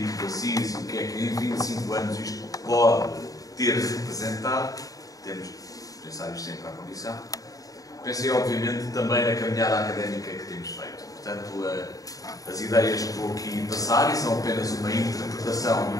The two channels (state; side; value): late; right; 0.17 ms